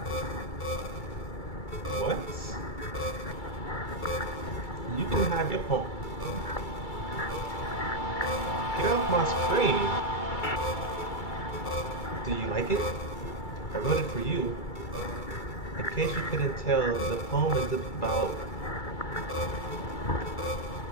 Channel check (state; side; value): late; right; 2.3 ms